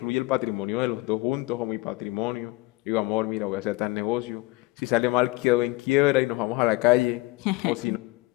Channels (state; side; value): quieter; right; 21.7 dB